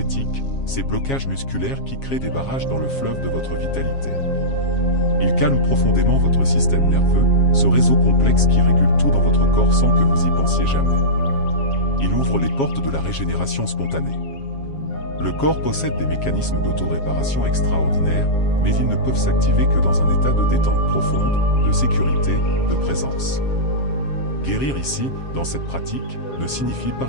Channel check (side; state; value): right; late; 7.4 ms